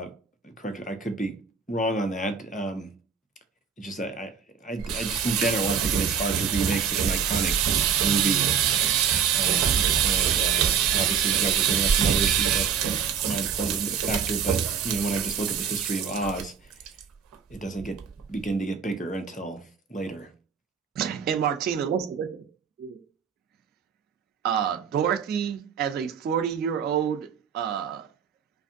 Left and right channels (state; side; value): quieter; left; 6.9 dB